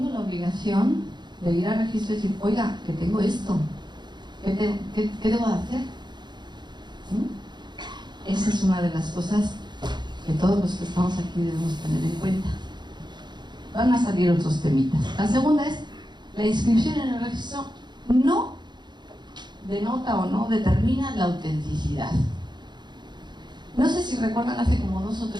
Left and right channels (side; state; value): left; late; 0.21 ms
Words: la obligación de ir al registro y decir, oiga, que tengo esto, ¿qué debo de hacer? Esa es una de las cosas que todos los que estamos aquí debemos tener en cuenta. Van a salir otros temitas. La segunda es, la inscripción en el registro no denota o no determina la autenticidad. No sé si recuerdan, hace como 2 o